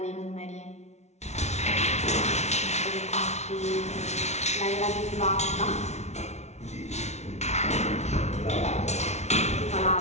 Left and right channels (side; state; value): right; late; 0.32 ms